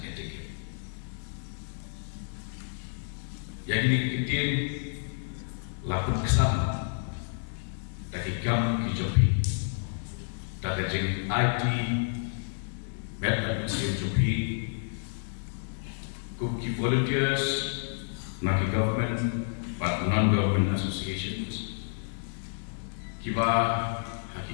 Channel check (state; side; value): silent; right; digital silence